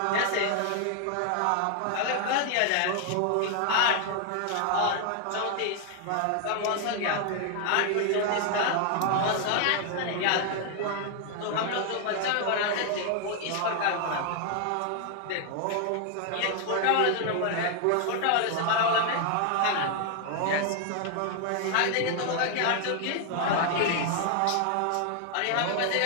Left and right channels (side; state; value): both; different; correlation 0.00